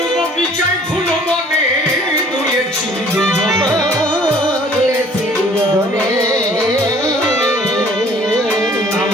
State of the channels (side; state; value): both; normal; correlation 0.54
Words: বগিচায় ফুল বনে দুলেছি দুজনে,